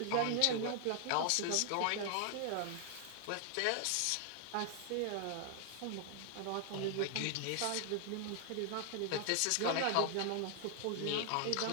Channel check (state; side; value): different; both; correlation 0.00